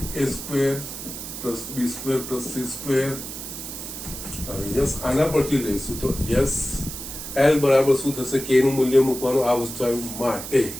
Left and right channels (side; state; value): right; noise; hiss, 9 dB below the sound